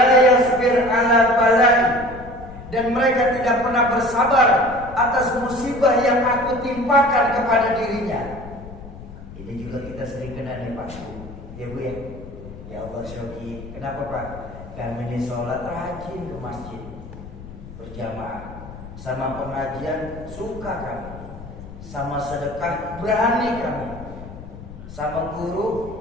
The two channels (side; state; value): left; noise; rumble, 14 dB below the sound